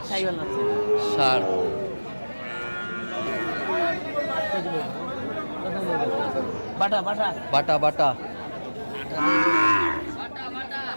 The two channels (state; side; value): inverted; both; correlation -1.00